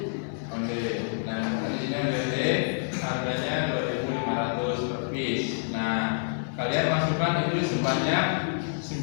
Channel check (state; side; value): silent; right; 60 dB below the other